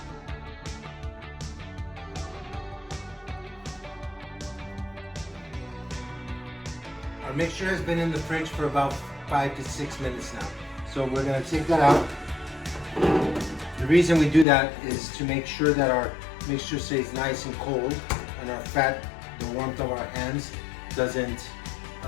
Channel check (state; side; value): drops out; right; at 14.5 s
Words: Our mixture has been in the fridge for about 5 to 6 minutes now. So we're gonna take that out. The reason we do that is to make sure that our mixture stays nice and cold and our fat, the warmth of our hands, doesn't